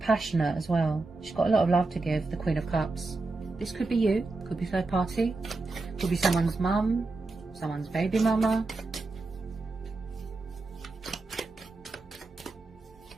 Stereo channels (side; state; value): left; quieter; 3.5 dB